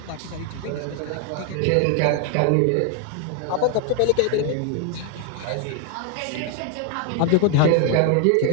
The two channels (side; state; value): both; different; correlation 0.01